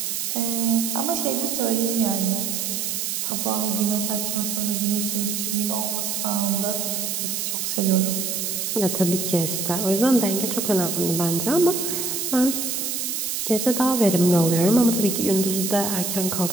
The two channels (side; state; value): right; noise; hiss, 2 dB below the sound